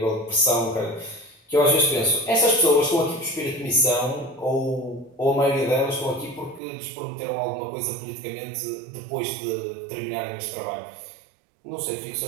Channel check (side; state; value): left; drops out; at 6.6 s